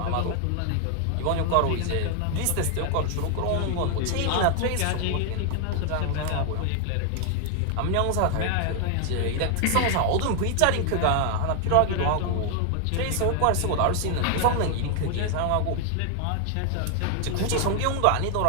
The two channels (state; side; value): different; both; correlation 0.00